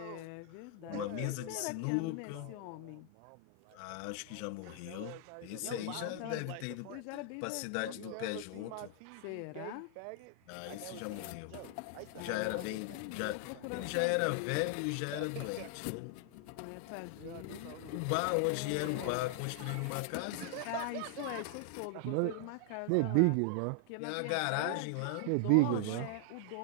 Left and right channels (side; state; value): both; different; correlation 0.00